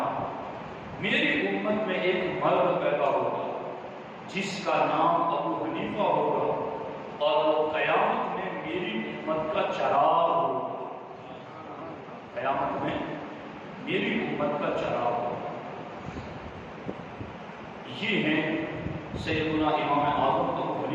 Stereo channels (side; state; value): both; identical; correlation 1.00